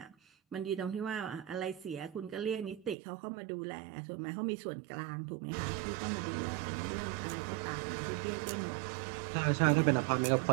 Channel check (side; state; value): left; drops out; at 3.0 s